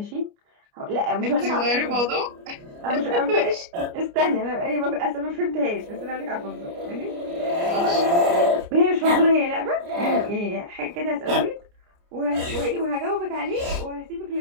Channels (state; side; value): late; left; 29 ms